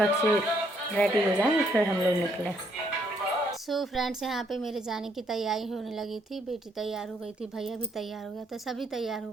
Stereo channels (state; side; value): normal; both; correlation 0.70